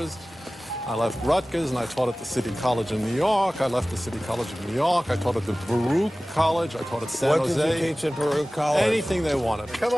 I left Rutgers, and I taught at the City College in New York. I left the City College of New York. I taught at the Baruch College. I taught at San Jose. What did you teach at Baruch College? Anything they wanted. Come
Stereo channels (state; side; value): normal; both; correlation 0.97